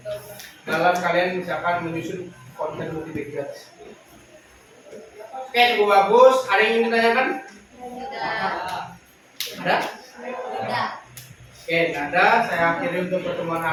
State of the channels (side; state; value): both; identical; correlation 1.00